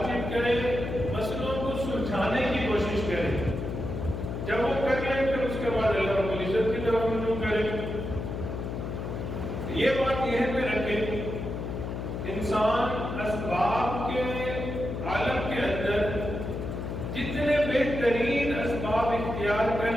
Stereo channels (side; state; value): left; noise; hum, 5 dB below the sound